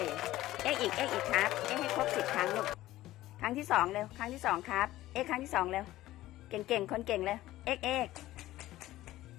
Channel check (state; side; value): quieter; right; 15.7 dB